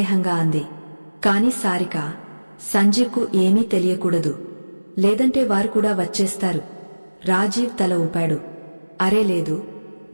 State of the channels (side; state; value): both; inverted; correlation -1.00